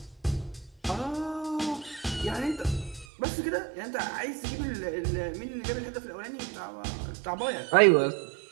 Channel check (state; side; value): drops out; left; at 3.1 s